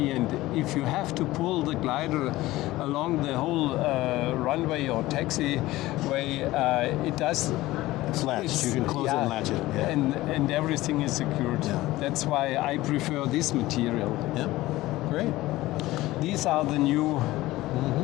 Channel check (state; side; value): quieter; right; 17.6 dB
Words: and if you have to pull the glider along the whole runway or taxiway, it does. it's latched. You can close it and latch it. Yeah. And everything is secured. Yeah. That's why I prefer this material. Yeah. Great. These are the new